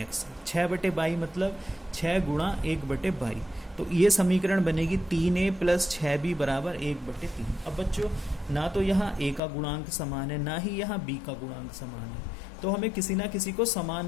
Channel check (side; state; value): right; drops out; at 9.4 s